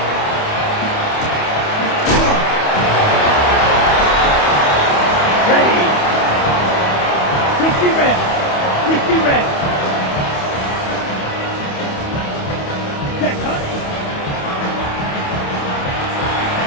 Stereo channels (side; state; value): right; late; 28 ms